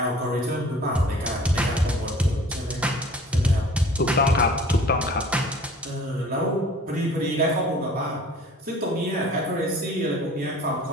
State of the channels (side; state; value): both; normal; correlation 0.48